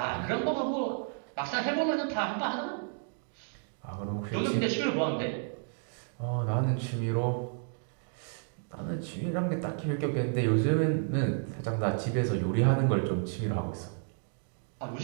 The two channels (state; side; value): silent; left; 57 dB below the other